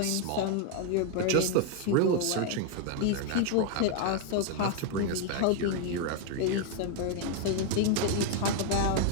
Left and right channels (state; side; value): different; both; correlation 0.00